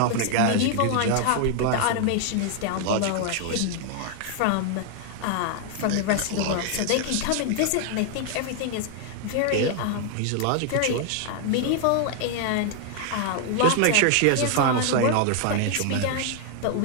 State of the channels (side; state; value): both; different; correlation 0.00